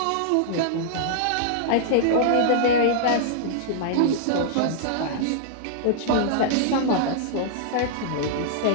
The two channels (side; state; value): both; different; correlation -0.01